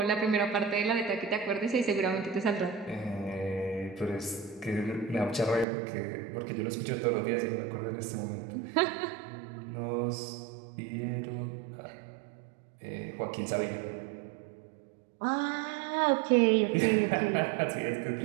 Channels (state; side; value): drops out; left; at 5.7 s